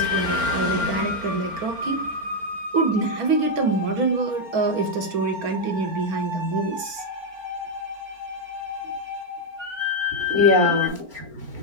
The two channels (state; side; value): late; left; 4.4 ms